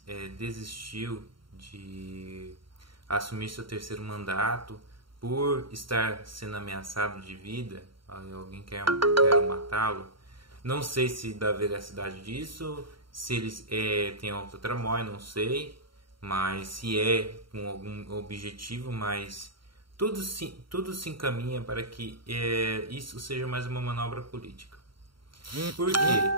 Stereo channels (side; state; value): left; late; 0.73 ms